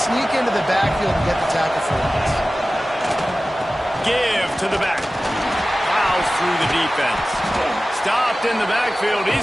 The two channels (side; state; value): both; normal; correlation 0.96